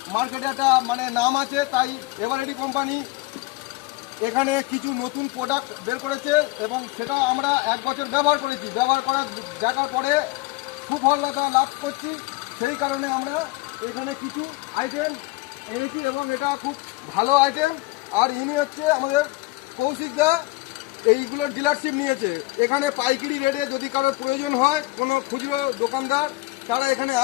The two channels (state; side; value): quieter; right; 21.6 dB